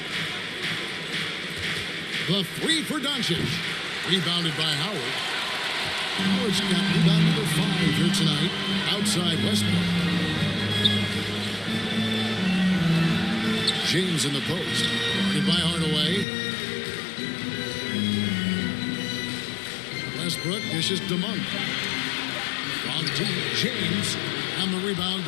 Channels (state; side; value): drops out; right; at 16.2 s